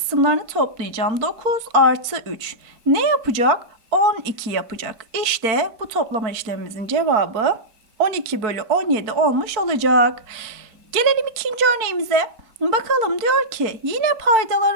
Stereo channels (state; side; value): late; left; 4.5 ms